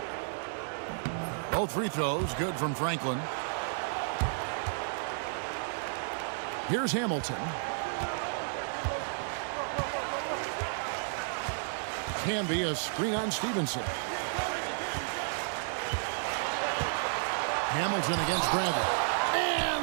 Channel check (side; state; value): left; silent; digital silence